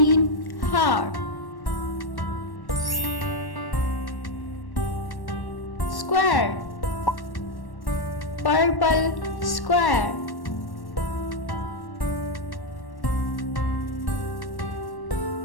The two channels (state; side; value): late; right; 1.1 ms